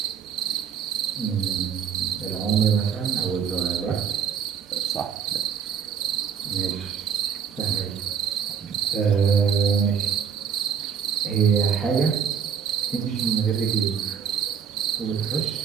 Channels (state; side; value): quieter; left; 7.4 dB